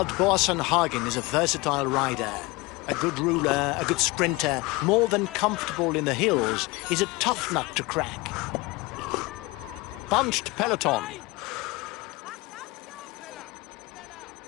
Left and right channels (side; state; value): right; quieter; 23.0 dB